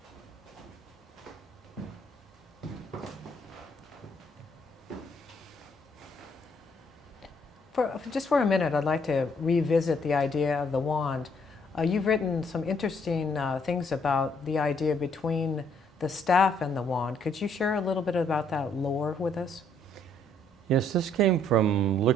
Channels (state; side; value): normal; both; correlation 0.68